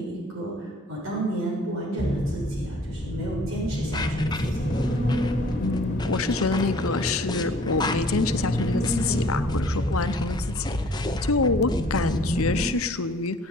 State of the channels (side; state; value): both; normal; correlation 0.53